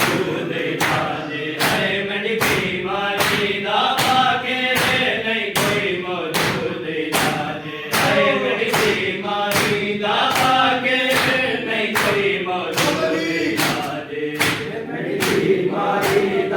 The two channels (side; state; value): both; identical; correlation 1.00